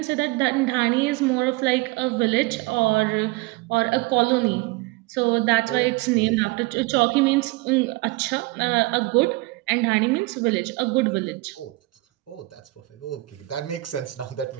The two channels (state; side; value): quieter; left; 21.8 dB